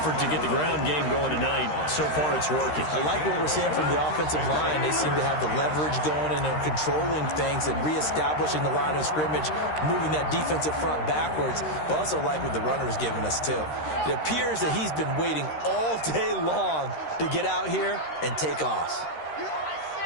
to get the ground game going tonight. So far, it's working. I like what we're seeing from the offensive line. They seem to have the leverage going, and they're controlling things and reestablishing the line of scrimmage, moving that defensive front backwards. But also like what the runner's giving us, too. It appears that he's been waiting all day long to get out here and take off.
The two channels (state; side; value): late; right; 13 ms